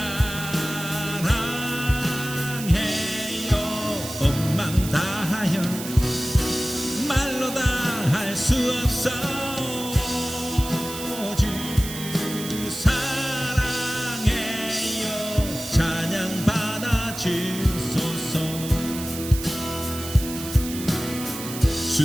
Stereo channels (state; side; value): noise; right; hiss, 9 dB below the sound